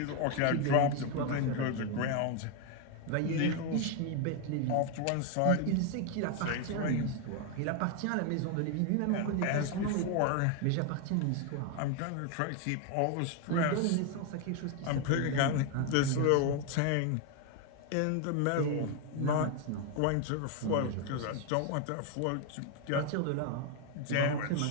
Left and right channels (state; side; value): different; both; correlation 0.01